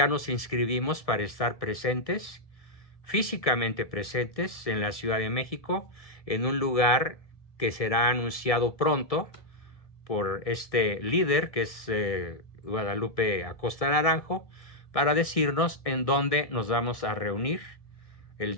nos inscribimos para estar presentes, físicamente presentes en la Ciudad de México, en un lugar que será anunciado pronto por este líder que es Guadalupe Acosta Naranjo, para decirnos en dónde nos vamos a reunir el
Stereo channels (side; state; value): right; late; 1.6 ms